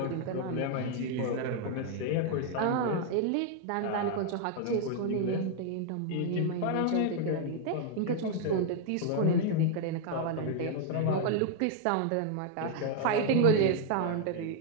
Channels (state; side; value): different; both; correlation 0.00